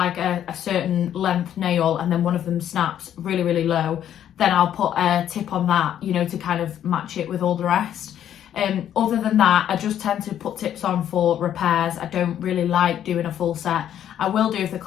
a certain length nail and then one of them snaps really low, then I'll put a tip on that, you know, to kind of match it with all the rest. Other than that, I just tend to put tips on for repairs. I don't really like doing a full set. I will do if the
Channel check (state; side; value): quieter; right; 10.4 dB